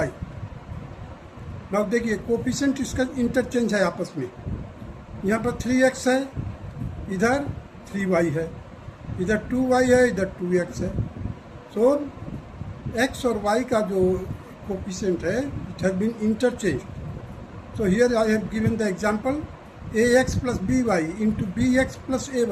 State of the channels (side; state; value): both; identical; correlation 1.00